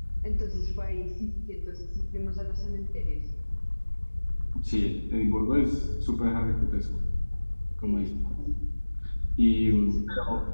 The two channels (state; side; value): inverted; both; correlation -1.00